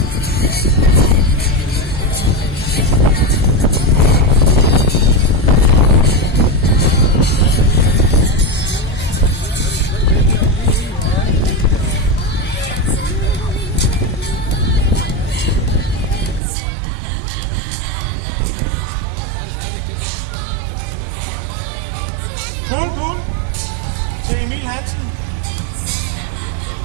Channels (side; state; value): left; drops out; at 16.4 s